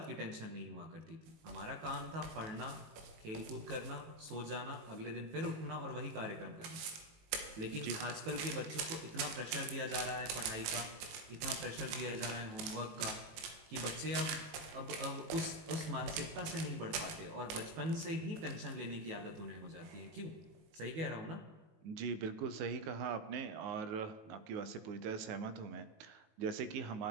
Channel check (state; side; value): late; left; 19 ms